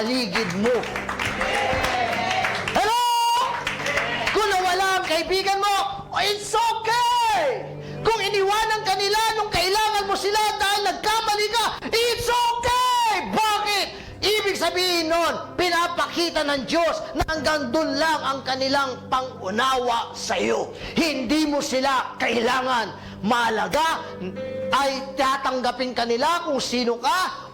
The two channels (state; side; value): identical; both; correlation 1.00